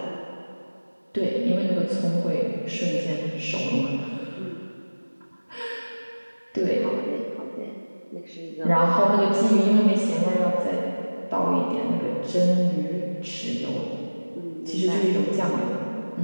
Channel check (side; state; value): both; inverted; correlation -1.00